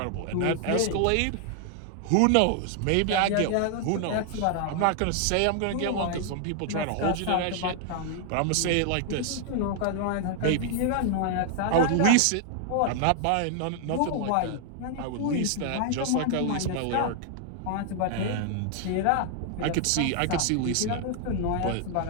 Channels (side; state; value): both; different; correlation 0.00